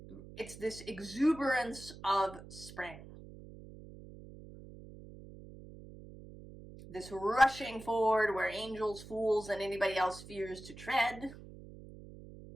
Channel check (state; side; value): noise; right; hum, 16 dB below the sound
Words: it's this exuberance of spring. This rushing forward where angels, fools, and anybody else fears to tread.